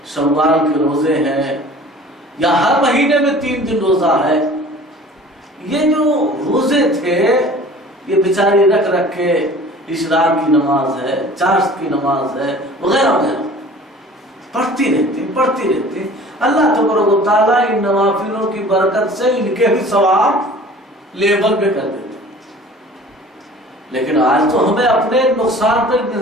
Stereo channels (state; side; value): normal; both; correlation 0.46